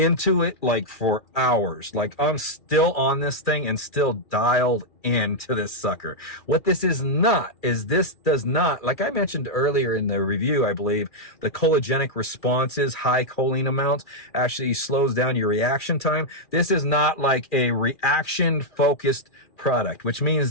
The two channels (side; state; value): right; late; 2.4 ms